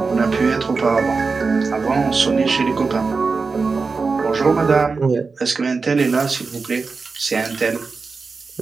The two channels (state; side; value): quieter; left; 4.5 dB